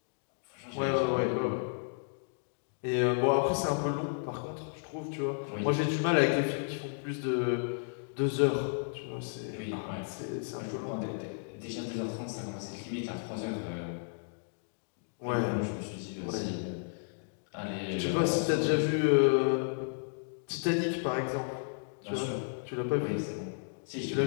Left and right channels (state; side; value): silent; right; digital silence